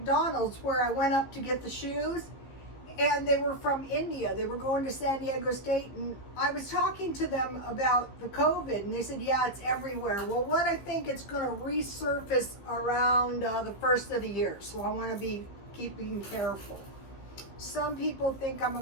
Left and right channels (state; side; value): late; right; 15 ms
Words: where I went up to get the shoes, and they were from India. They were going to San Diego State, and I was talking to them about the COVID, and they said, yeah, it's everywhere. Well, what I think it's going to resurface around the first of the year. So I want to be keeping careful. Some people think I'm a